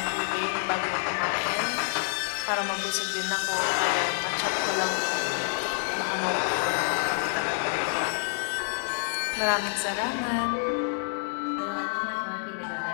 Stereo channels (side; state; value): right; silent; digital silence